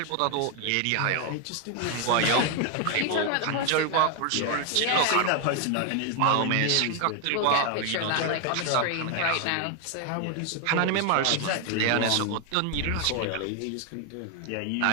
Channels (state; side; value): different; both; correlation 0.01